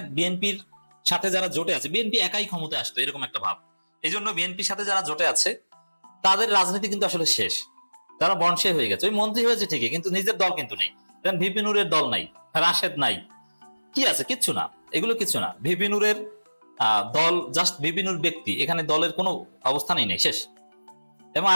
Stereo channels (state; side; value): inverted; both; correlation -1.00